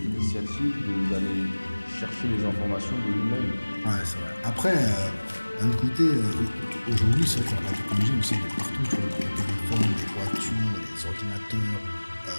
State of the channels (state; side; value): inverted; both; correlation -1.00